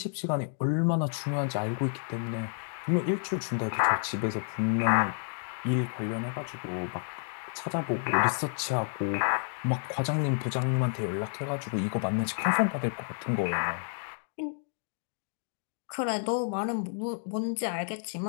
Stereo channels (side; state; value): right; silent; digital silence